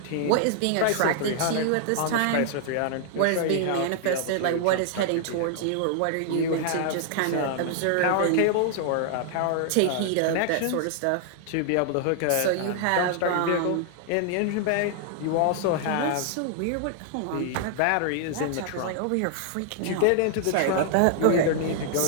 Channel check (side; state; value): both; different; correlation -0.01